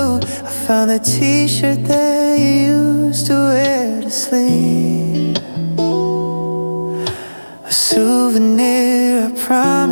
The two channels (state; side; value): inverted; both; correlation -1.00